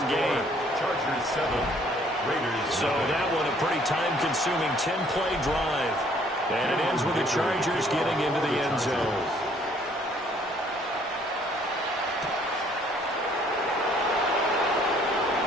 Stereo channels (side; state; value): both; normal; correlation 0.61